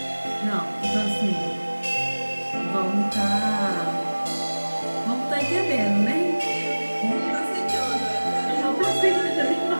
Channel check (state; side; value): inverted; both; correlation -1.00